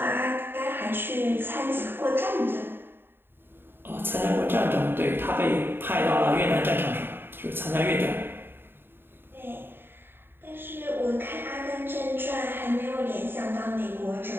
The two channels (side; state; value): left; late; 0.10 ms